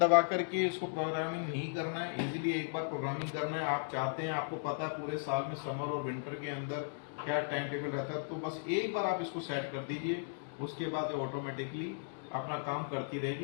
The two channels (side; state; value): right; silent; digital silence